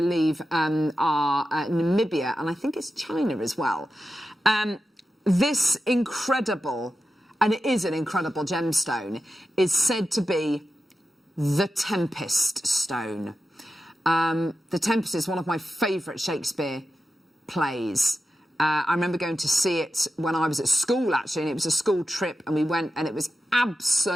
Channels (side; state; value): both; normal; correlation 0.91